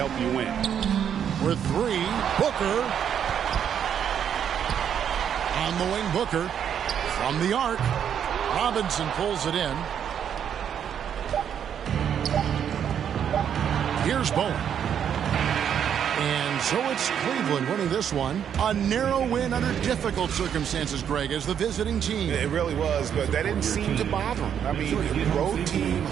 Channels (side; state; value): left; quieter; 8.7 dB